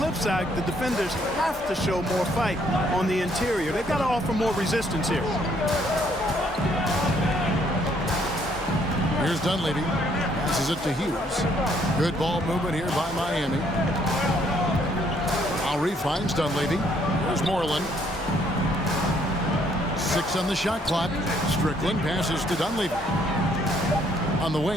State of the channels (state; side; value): normal; both; correlation 0.67